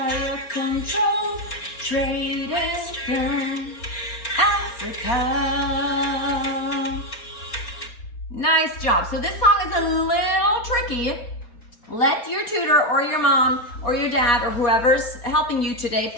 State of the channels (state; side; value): late; right; 4.3 ms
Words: controlled trade in Africa. Nice job. So this song is a little tricky. Let your tutor or your mom or your dad or whoever's helping you today